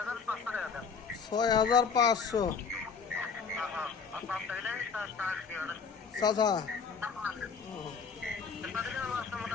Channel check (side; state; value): right; quieter; 5.6 dB